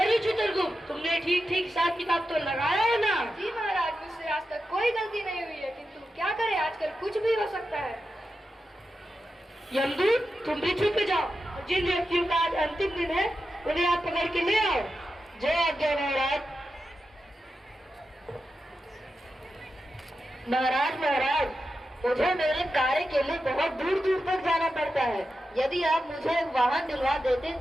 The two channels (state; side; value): normal; both; correlation 0.90